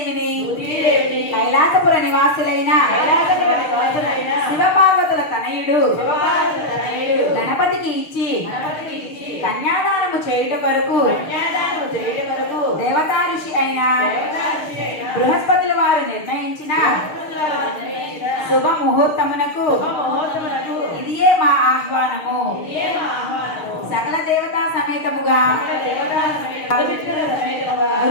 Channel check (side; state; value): right; late; 6.5 ms